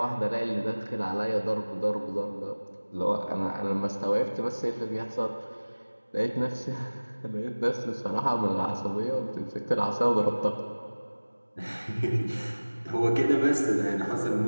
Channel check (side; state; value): both; inverted; correlation -1.00